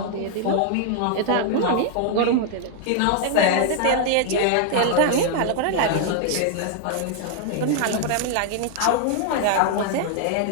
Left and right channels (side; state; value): both; different; correlation 0.00